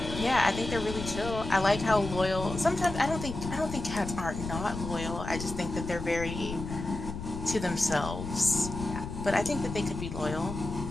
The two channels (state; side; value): noise; left; rumble, 7 dB below the sound